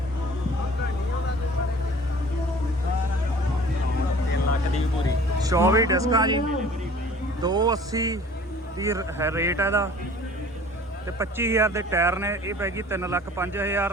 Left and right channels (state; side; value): normal; both; correlation 0.48